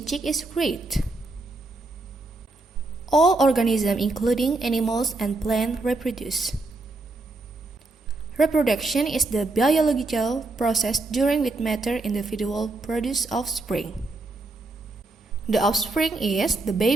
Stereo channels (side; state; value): left; quieter; 3.2 dB